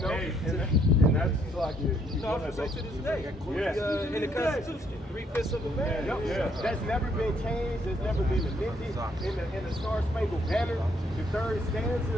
know? Hey, and that's like No, to this day. Yeah. In the Constitution, 3/5 of a man. Yep. Yeah. That's never been changed. That's never been amended. In the Star Spangled Banner, the third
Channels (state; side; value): normal; both; correlation 0.69